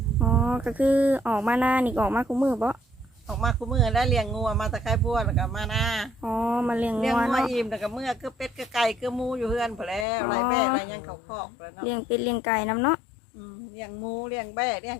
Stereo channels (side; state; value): right; drops out; at 10.1 s